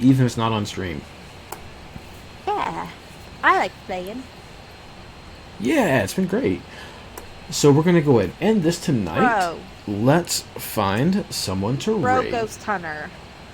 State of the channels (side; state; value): both; identical; correlation 1.00